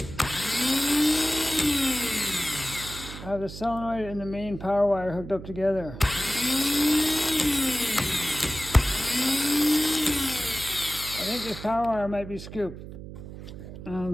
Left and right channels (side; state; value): right; noise; hum, 12 dB below the sound